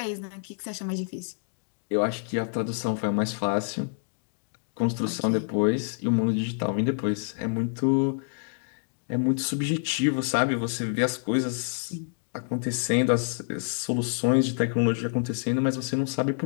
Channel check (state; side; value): silent; right; digital silence